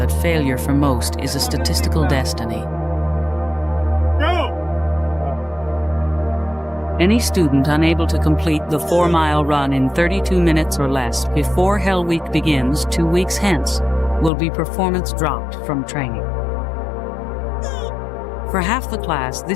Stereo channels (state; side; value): drops out; right; at 14.3 s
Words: failure for most is a statistical destiny. Any student unable to complete the 4-mile run in 32 minutes or less before Hell Week begins 2 weeks hence will be performance dropped from training. For half the class,